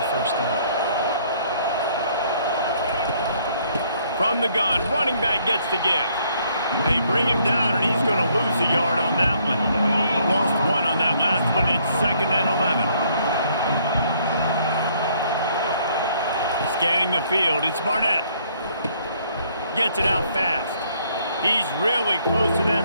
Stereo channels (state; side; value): inverted; both; correlation -0.66